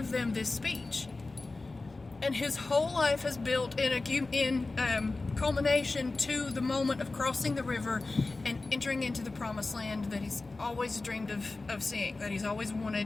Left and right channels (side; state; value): right; quieter; 3.4 dB